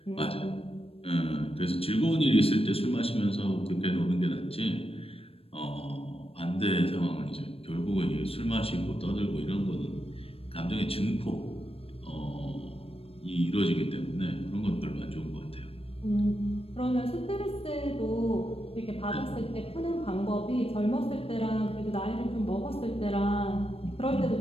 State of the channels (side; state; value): right; late; 0.28 ms